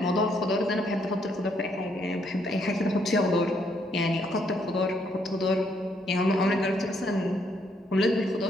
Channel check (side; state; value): both; normal; correlation 0.72